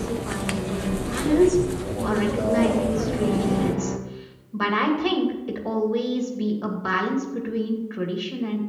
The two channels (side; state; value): both; identical; correlation 1.00